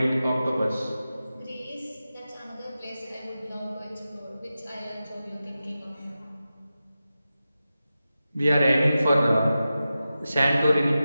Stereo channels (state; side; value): inverted; both; correlation -0.93